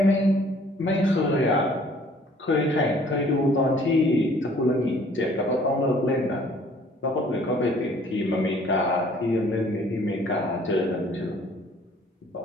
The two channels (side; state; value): both; normal; correlation 0.56